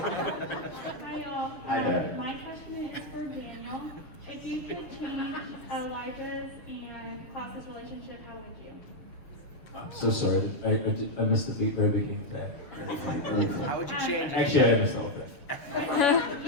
y'all. Hi there. My question is for Daniel. If you could change Elijah's and Klaus's relationship, how would you? I'm so sorry. I missed the very beginning of that. How would you change it? Actually, I missed all of that. If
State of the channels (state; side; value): late; right; 6.8 ms